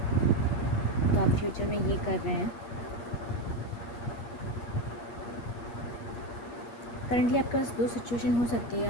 तो आप फ्यूचर में ये कर रहे हैं। करेंटली आपके पास दो सिचुएशन हो सकती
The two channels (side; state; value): right; late; 8.4 ms